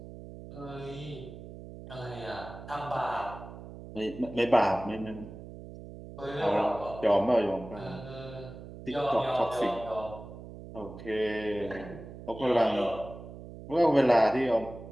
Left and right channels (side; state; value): right; noise; hum, 14 dB below the sound